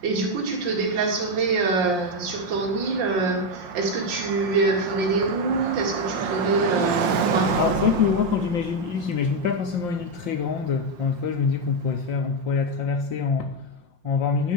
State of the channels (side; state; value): left; late; 5.6 ms